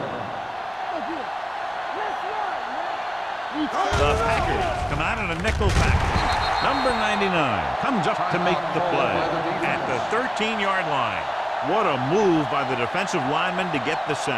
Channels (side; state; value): both; identical; correlation 1.00